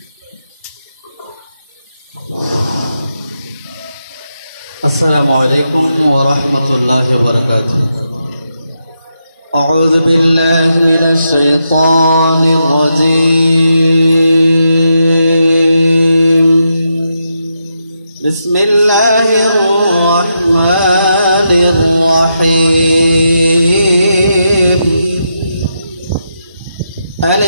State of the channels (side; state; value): both; inverted; correlation -0.83